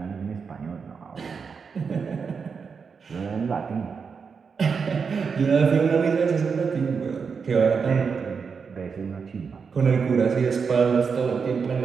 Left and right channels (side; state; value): left; quieter; 5.7 dB